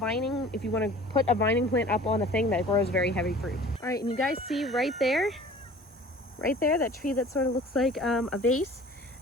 if you want to put a vining plant up on a thing that grows very heavy fruit. All right, and you guys see right there, that tree that sort of looks like a vase,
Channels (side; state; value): both; normal; correlation 0.46